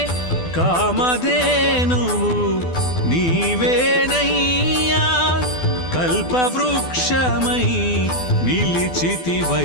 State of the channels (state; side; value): late; right; 12 ms